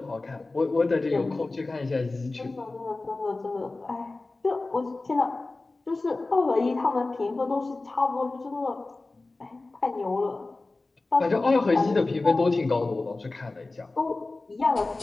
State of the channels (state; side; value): quieter; right; 3.3 dB